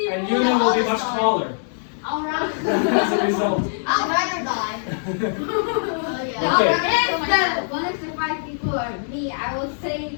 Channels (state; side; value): silent; right; 64 dB below the other